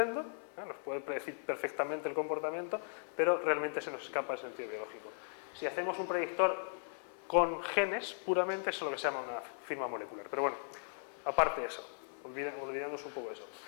nos puede predecir perfectamente el comportamiento, pero realmente se nos escapa el sentido biológico. Si hacemos un predictor con genes, puramente eso es lo que se llama una firma molecular. Pero bueno, aparte de eso, olvidemos un poco eso.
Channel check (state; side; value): silent; right; 53 dB below the other